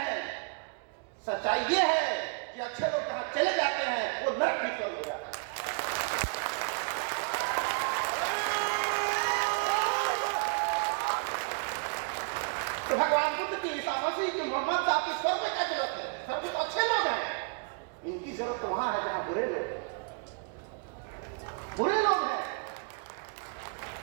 सच्चाई ये है कि अच्छे लोग जहां चले जाते हैं वो नरक भी स्वर्ग हो जाता है। तो भगवान बुद्ध की, ईसा मसीह की, मोहम्मद साहब की स्वर्ग में क्या जरूरत है? स्वर्ग तो अच्छे लोग हैं, इनकी जरूरत तो वहां है जहां बुरे लोग हैं।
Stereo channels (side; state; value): left; quieter; 37.7 dB